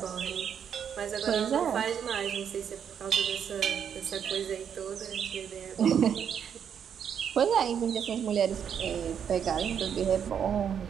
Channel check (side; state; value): left; quieter; 8.1 dB